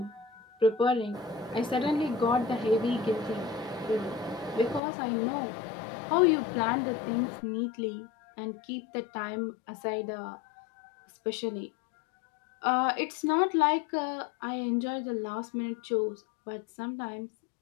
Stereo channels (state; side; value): drops out; right; at 4.8 s